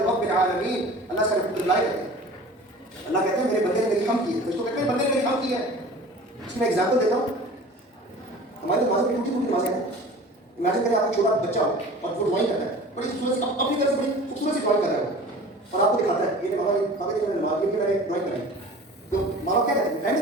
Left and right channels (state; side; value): normal; both; correlation 0.41